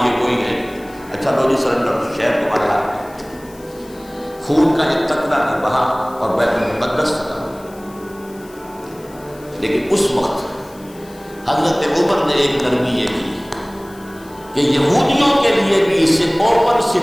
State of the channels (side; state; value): left; noise; hiss, 24 dB below the sound